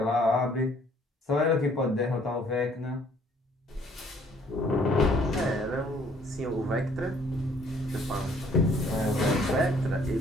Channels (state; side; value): normal; both; correlation 0.61